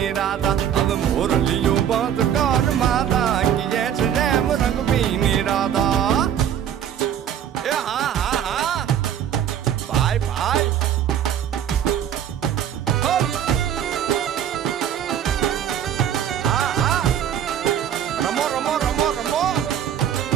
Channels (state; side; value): quieter; left; 9.7 dB